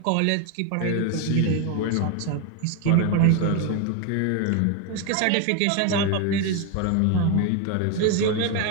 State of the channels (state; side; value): different; both; correlation 0.01